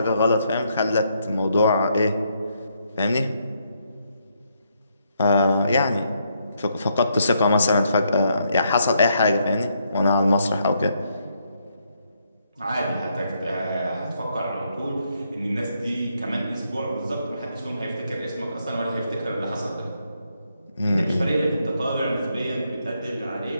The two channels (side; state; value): both; inverted; correlation -0.76